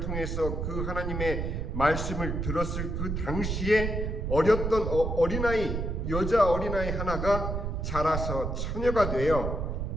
그 하나님의 말씀을 들었을 그 당시에 어렸던 어린아이, 여자 어린아이 하나가 자라서 처녀가 되어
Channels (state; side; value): noise; right; rumble, 2 dB below the sound